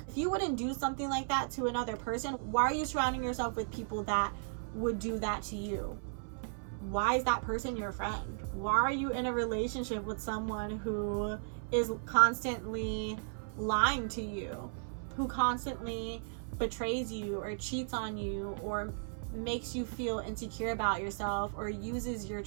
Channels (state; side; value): silent; left; 54 dB below the other